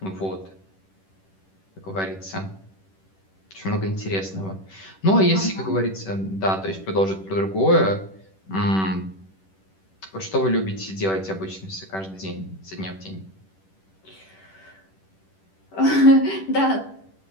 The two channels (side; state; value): right; late; 10 ms